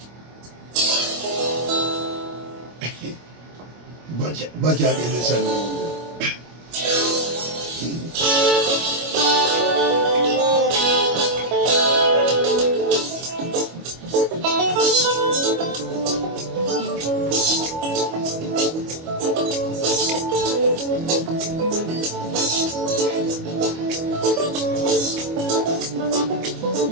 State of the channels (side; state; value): left; late; 25 ms